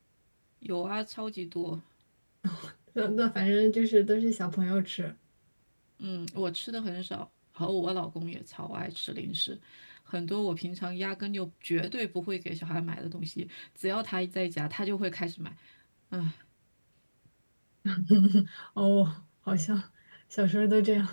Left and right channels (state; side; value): inverted; both; correlation -1.00